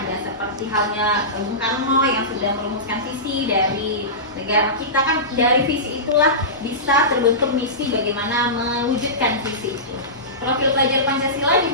Seperti halnya Bung Karno yang sudah merumuskan visi dari negara kita, kan dari visi itulah bisa terbentuk misi bagaimana mewujudkan visi itu. Profil pelajar Pancasila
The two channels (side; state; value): both; normal; correlation -0.20